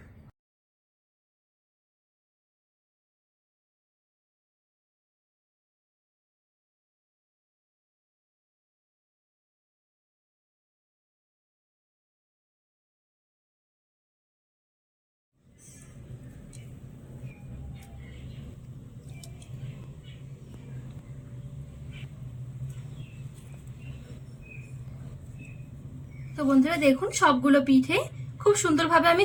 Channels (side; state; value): both; identical; correlation 1.00